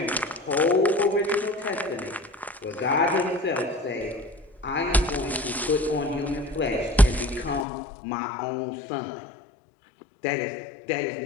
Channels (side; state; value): right; drops out; at 7.7 s